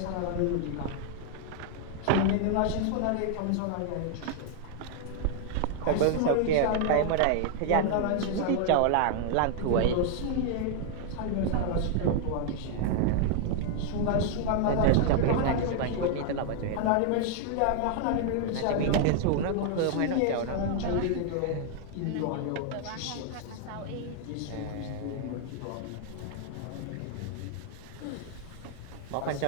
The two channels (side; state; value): both; different; correlation 0.00